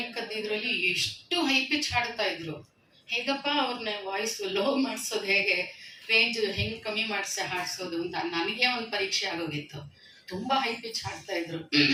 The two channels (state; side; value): identical; both; correlation 1.00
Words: ಇದರಲ್ಲಿ ಎಷ್ಟು ಹೈ ಪಿಚ್ ಹಾಡ್ತಾ ಇದ್ರು. ಹೇಗಪ್ಪ ಅವ್ರನ್ನ ವಾಯ್ಸ್ ಲೋ ಮಾಡಿಸೋದು, ಹೇಗೆ ರೇಂಜ್ ಹೆಂಗ್ ಕಮ್ಮಿ ಮಾಡಿಸಿ ಹಾಡ್ಸೋದು ಅಂತ ನನಗೆ ಒಂದು ಪರೀಕ್ಷೆ ಆಗೋಗಿತ್ತು. ತುಂಬಾ ಹೈ ಪಿಚ್ ಹಾಡ್ತಾ ಇದ್ರು,